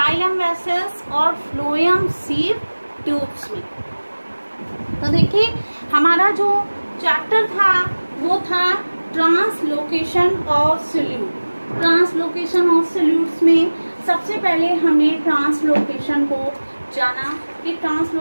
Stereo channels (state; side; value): inverted; both; correlation -1.00